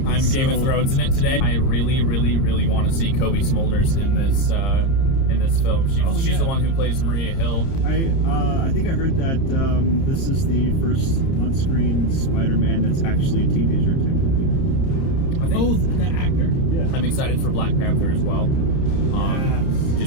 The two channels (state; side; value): late; right; 30 ms